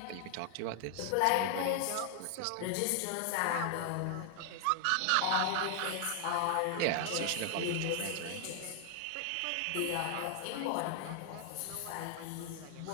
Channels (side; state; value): both; different; correlation 0.00